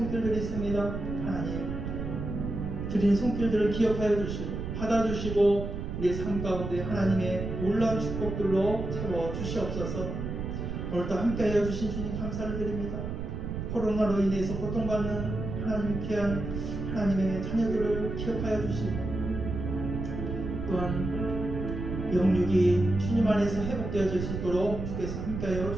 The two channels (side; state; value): right; noise; rumble, 5 dB below the sound